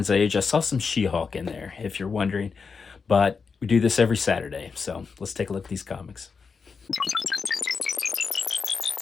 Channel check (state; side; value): quieter; right; 5.3 dB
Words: Age. I saw some She-Hulk in there, if you're wondering. But we do this every Saturday, so let's take a look at these comics.